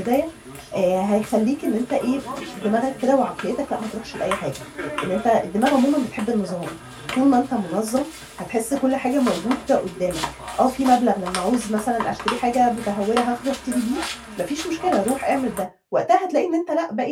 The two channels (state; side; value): identical; both; correlation 1.00